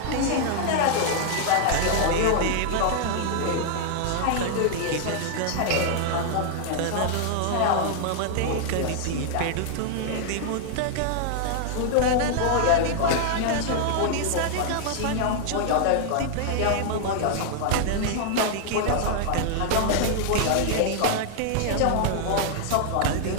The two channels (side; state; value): both; different; correlation -0.01